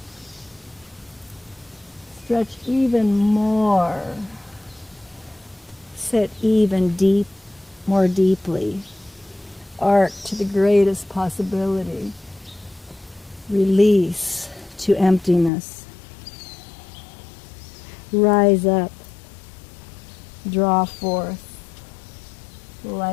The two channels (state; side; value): drops out; right; at 15.5 s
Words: Stretch even more. Sit even more deeply. Arc to the greatest possibility. Release to emptiness. Rise up. Draw forth